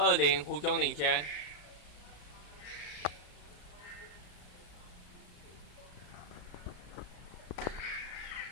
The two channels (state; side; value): late; right; 34 ms